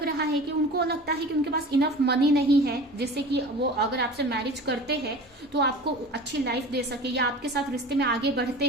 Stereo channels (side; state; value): both; normal; correlation 0.38